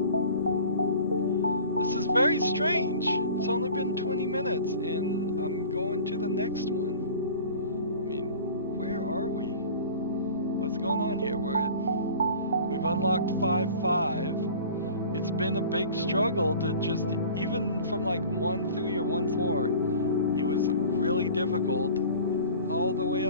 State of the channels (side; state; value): both; inverted; correlation -0.42